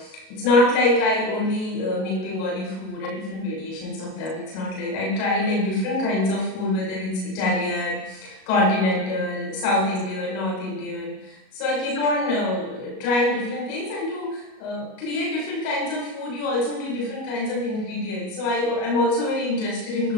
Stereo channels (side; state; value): right; late; 37 ms